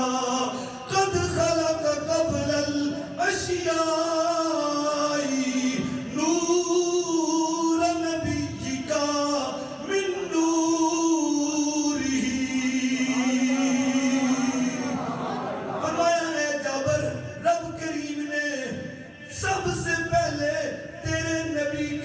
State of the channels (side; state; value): both; identical; correlation 1.00